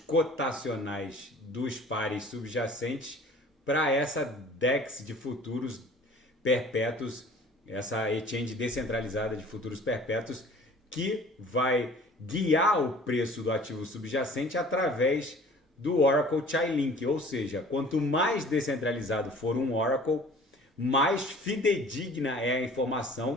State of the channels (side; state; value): both; normal; correlation 0.48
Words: dos pares subjacentes para essa DEX de futuros perpétuos, essa exchange descentralizada de futuros perpétuos, que vai guiar o preço do ativo subjacente através do Oracle Chainlink, ou seja, quanto mais descentralizado for um Oracle, mais fidedigna é a